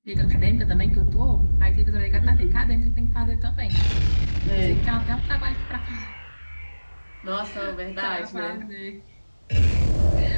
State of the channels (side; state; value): both; inverted; correlation -1.00